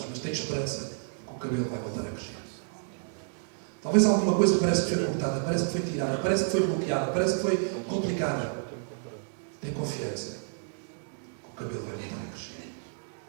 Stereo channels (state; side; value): silent; left; digital silence